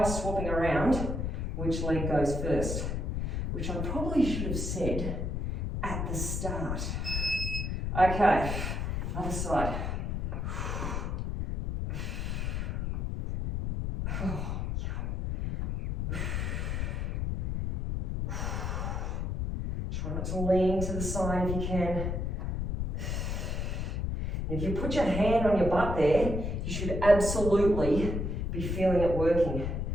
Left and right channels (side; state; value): left; noise; rumble, 1 dB below the sound